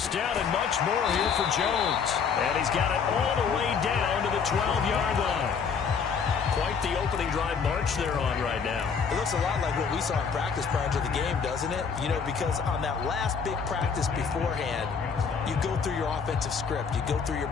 down and much more here for Jones. And he's got it all the way down to the 12-yard line. Quite the opening drive march they're on right now. It looks a lot like what we saw in practice prior to the game, doesn't it? You know, because on that last big practice beforehand, you go through your offensive script. You go through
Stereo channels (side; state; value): right; quieter; 6.1 dB